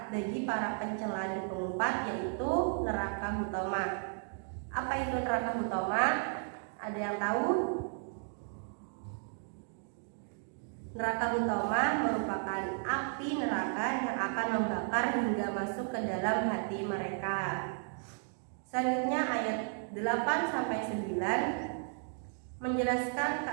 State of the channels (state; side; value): silent; left; 55 dB below the other